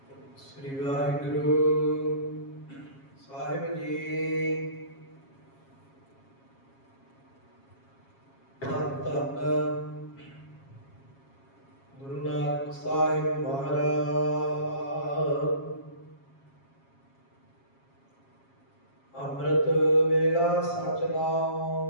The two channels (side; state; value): right; late; 7.3 ms